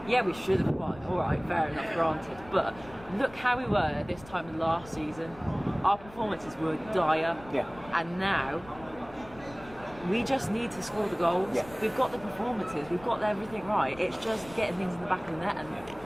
Yeah, we should have won. All right, fair enough, granted. But look how we were at this time last season. Our performances were dire. Yeah. And now, we just need to score the goals. Yeah. We've got the performances. We've got everything right. It's just getting things in the back of the net.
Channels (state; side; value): noise; left; rumble, 20 dB below the sound